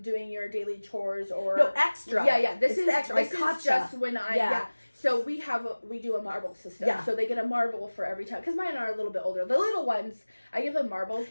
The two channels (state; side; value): inverted; both; correlation -1.00